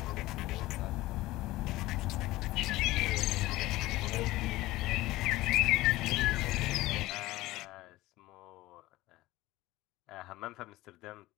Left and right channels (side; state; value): right; quieter; 18.0 dB